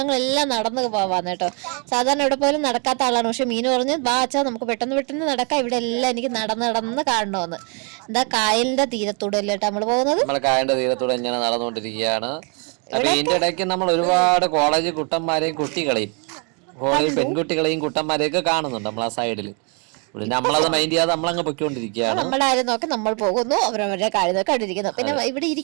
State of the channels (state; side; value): quieter; left; 35.9 dB